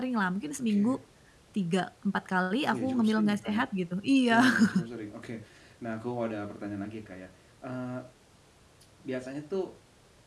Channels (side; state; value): both; identical; correlation 1.00